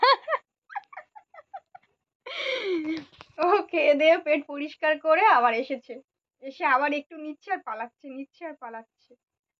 ও খেয়ে দিয়ে পেট পরিষ্কার করে আবার এসেছে, এসে আবার একটু নিচ্ছে আর পালাচ্ছে, নিচ্ছে আর পালাচ্ছে।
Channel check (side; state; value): both; identical; correlation 1.00